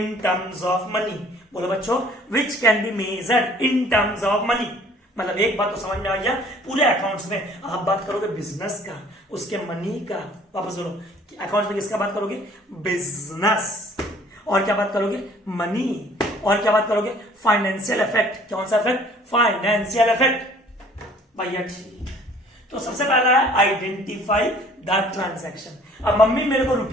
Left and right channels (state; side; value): normal; both; correlation 0.54